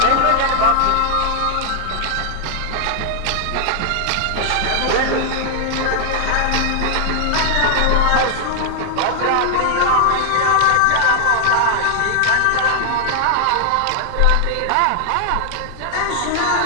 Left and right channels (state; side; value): different; both; correlation 0.00